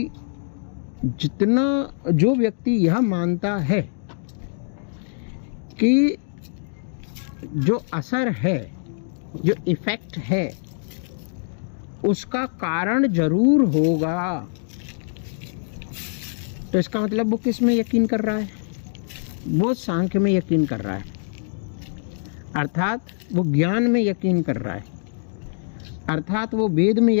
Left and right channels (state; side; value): silent; right; digital silence